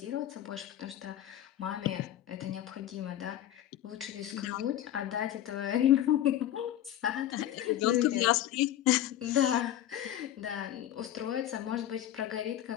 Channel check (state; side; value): quieter; right; 12.2 dB